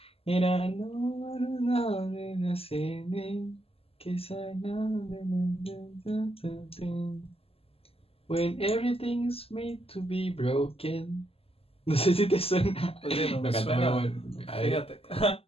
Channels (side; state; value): right; late; 0.28 ms